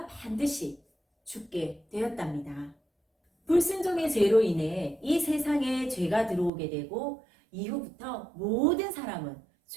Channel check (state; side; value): drops out; left; at 6.5 s